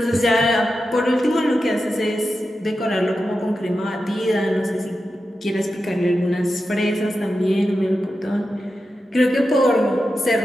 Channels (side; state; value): both; normal; correlation 0.90